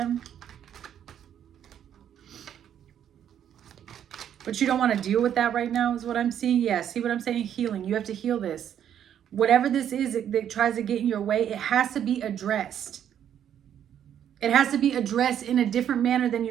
But you don't want to deal with that right now is what I'm seeing. Yeah, see what I'm saying? Healing. You have to heal this. Whatever this is that tries to get in your way, it has to be addressed. It has to be addressed in a different manner than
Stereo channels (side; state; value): left; quieter; 9.7 dB